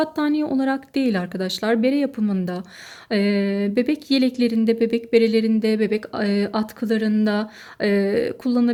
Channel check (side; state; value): both; identical; correlation 1.00